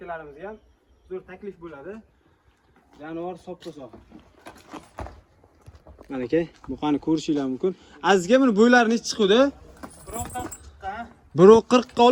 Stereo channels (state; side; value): identical; both; correlation 1.00